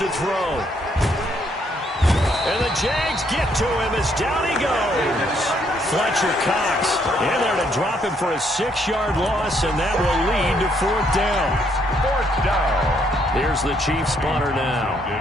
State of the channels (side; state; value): both; normal; correlation 0.71